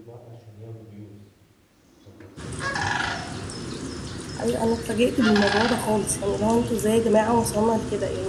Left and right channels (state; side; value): identical; both; correlation 1.00